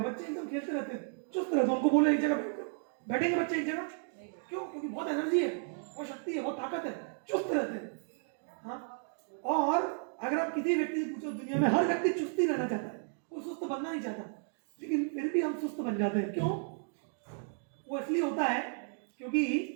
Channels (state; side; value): silent; left; 55 dB below the other